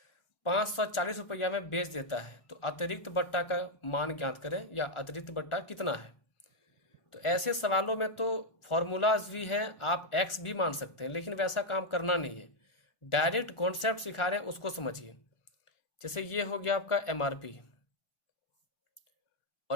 540 रुपया में बेच देता है। तो अतिरिक्त बट्टा का मान ज्ञात करें, या अतिरिक्त बट्टा कितना है। तो ऐसे सवालों में तो फॉर्मूलाज भी हैं, आप एक्स भी मान सकते हैं, लेकिन वैसा काम करना नहीं है, डायरेक्ट कॉन्सेप्ट सिखा रहे हैं उसको समझिए। जैसे ये हो गया आपका एमआरपी,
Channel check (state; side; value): late; right; 1.4 ms